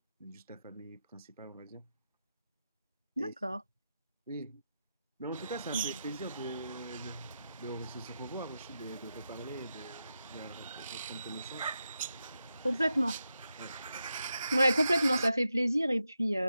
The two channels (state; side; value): inverted; both; correlation -0.88